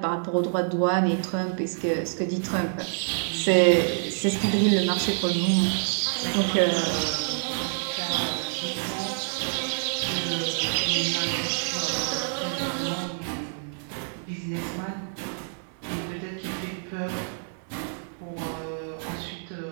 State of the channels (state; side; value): silent; left; digital silence